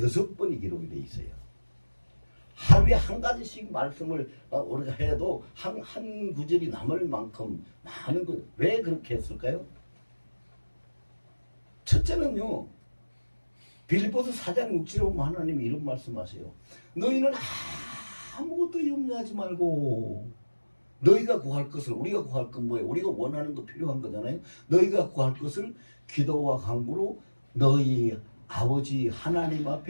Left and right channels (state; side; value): inverted; both; correlation -1.00